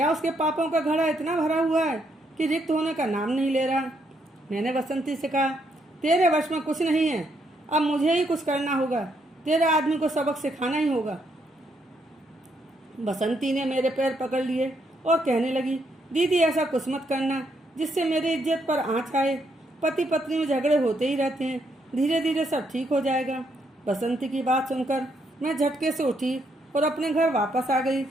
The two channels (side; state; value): both; normal; correlation 0.75